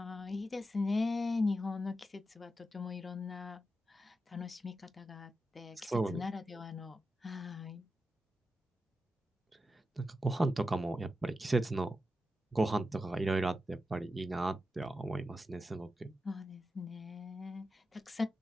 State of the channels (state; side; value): normal; both; correlation 0.89